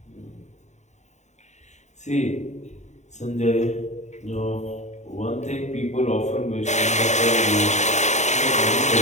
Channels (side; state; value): right; late; 0.34 ms